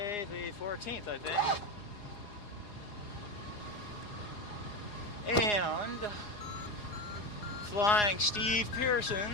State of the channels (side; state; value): right; late; 4.8 ms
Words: the 14th, I think. And flying Steve